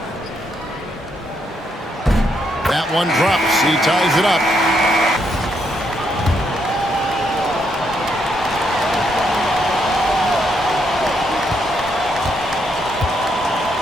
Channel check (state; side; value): normal; both; correlation 0.76